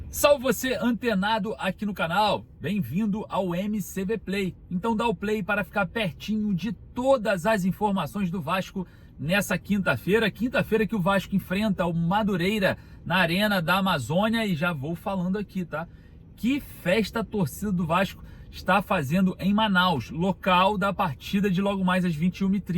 Salve você antenado aqui no canal, bem-vindo ao MCV Play. Então dá o play para ficar pertinho de todas as informações do Vasco nessa quinta-feira que o Vasco enfrenta o Madureira na Arena da Amazônia. E já vou falando aqui, tá? Que festa a torcida do Vasco está fazendo em Manaus, local da partida de logo mais às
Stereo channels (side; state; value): both; identical; correlation 1.00